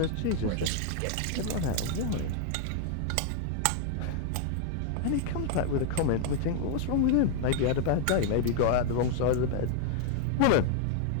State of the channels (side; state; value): both; different; correlation 0.00